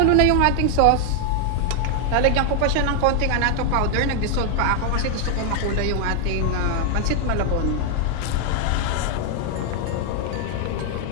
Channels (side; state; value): both; different; correlation 0.00